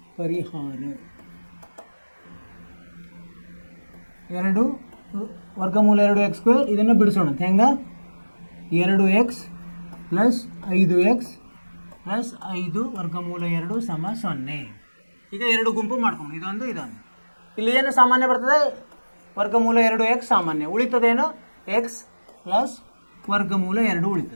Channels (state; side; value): inverted; both; correlation -1.00